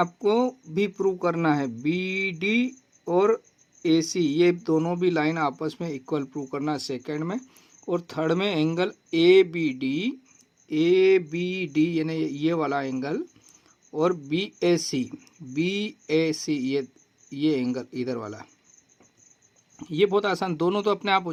भी प्रूव करना है। BD और AC ये दोनों भी लाइन आपस में इक्वल प्रूव करना है सेकंड में। और थर्ड में एंगल ABD यानी ये वाला एंगल और BAC ये एंगल इधर वाला, ये बहुत आसान, दोनों तो अपने आप हो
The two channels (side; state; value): both; identical; correlation 1.00